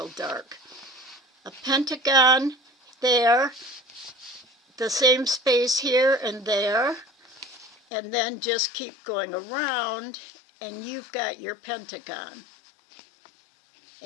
dark. A pentagon there, the same space here and there, and then just keep going around, and you've got your pentagon.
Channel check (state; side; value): drops out; right; at 7.8 s